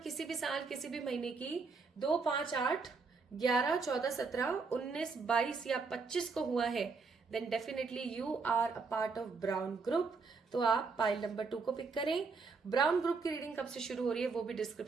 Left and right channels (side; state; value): left; quieter; 4.6 dB